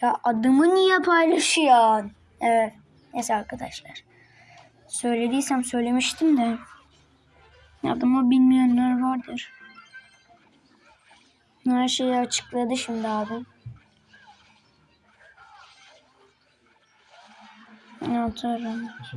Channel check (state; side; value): identical; both; correlation 1.00